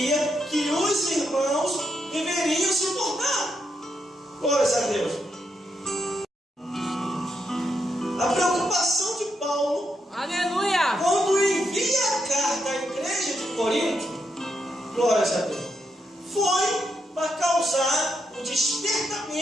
que os irmãos deveriam se portar. Glória a Deus. A preocupação de Paulo, Aleluia. quando envia a carta à igreja de Corinto, glória a Deus, foi para causar o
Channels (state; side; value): normal; both; correlation 0.81